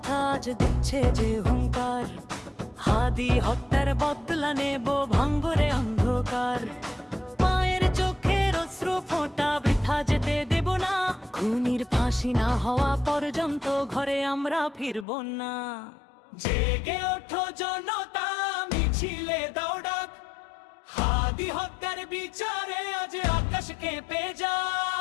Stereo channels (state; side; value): drops out; right; at 15.1 s